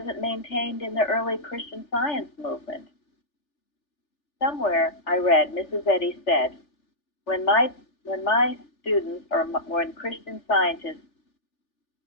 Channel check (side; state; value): right; late; 3.4 ms